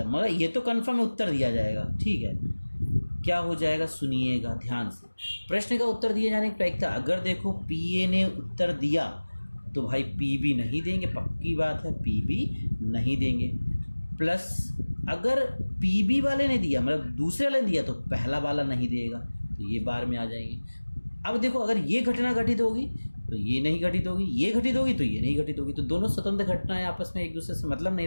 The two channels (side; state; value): both; inverted; correlation -1.00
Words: मगर ये तो कंफर्म है उत्तर दिया जाएगा। ठीक है, क्या हो जाएगा, सुनिएगा ध्यान से। प्रश्न का उत्तर दिए जाने की प्रायिकता, अगर देखो पीए ने उत्तर दिया तो भाई पीबी नहीं देंगे, पक्की बात है पीबी नहीं देंगे, प्लस अगर पीबी वाले ने दिया, मतलब दूसरे वाले ने दिया, तो पहला वाला नहीं देगा, तो ये बार में आ जाएंगे। अब देखो अगर ये घटना घटित होगी तो ये नहीं घटित होगी, ये घटित होगी तो ये नहीं घटित होगी, तो दोनों स्वतंत्र घटनाएं आपस में एक दूसरे से मतलब नहीं